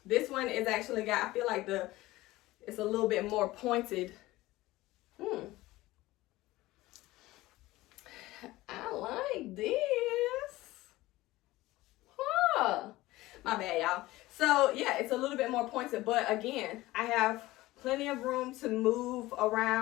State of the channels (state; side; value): quieter; right; 18.2 dB